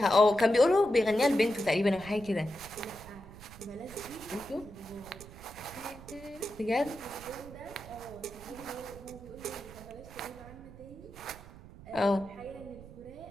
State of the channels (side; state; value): right; noise; rumble, 17 dB below the sound